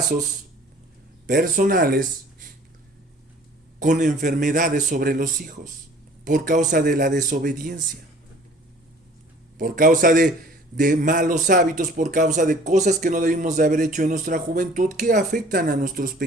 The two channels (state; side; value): normal; both; correlation 0.51